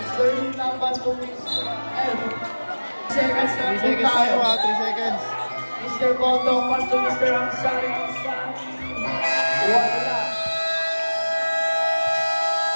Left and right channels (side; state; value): both; inverted; correlation -1.00